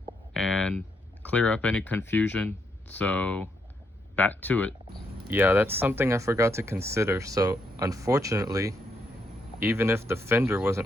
and clear up any confusion, so back to it. Yeah, that's something I forgot to consider. So unfortunately, even if the fender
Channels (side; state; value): both; normal; correlation 0.77